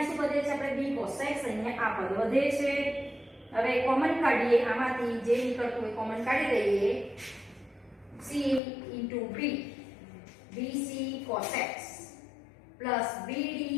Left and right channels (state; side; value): drops out; right; at 8.6 s